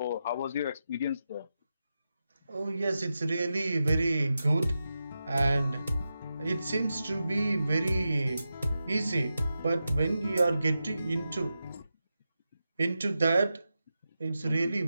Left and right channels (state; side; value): inverted; both; correlation -0.90